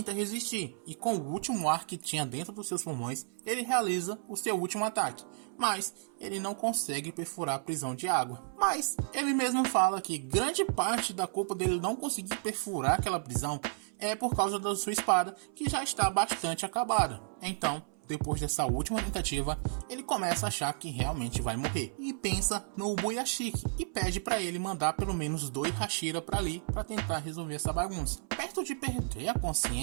resistir, e com o último ar que tinha dentro dos seus pulmões, ele realiza o seu último ataque, mas ele não consegue perfurar a prisão de água. Mas ele mesmo fala que grande parte da culpa dele não conseguir perfurar aquela prisão é por causa da sua espada, que já está bastante acabada. Então, depois dessa última tentativa, ele começa a achar que realmente vai morrer e pensa no Ubuyashiki e pede para ele mandar pelo menos 2 Hashira para ali para tentar resolver essa bagunça. Perto de perder a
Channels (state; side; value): silent; left; 56 dB below the other